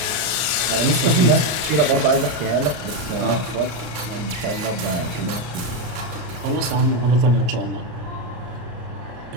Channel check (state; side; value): late; left; 32 ms